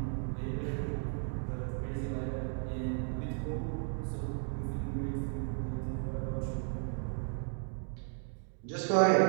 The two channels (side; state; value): left; silent; 55 dB below the other